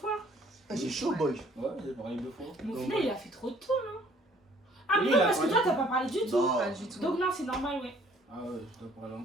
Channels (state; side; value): normal; both; correlation 0.59